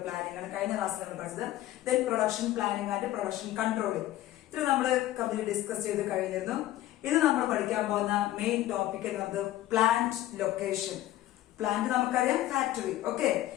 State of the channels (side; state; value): right; quieter; 14.7 dB